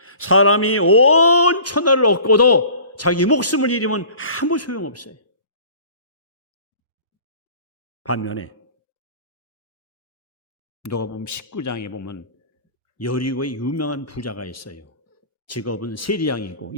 사람이 온 천하를 얻고도 자기 목숨을 잃으면 아무 소용없어요. 반면에 누가 보면 19장에 보면 여리고의 유명한 부자가 있어요. 직업은 세리장이고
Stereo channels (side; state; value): both; inverted; correlation -0.45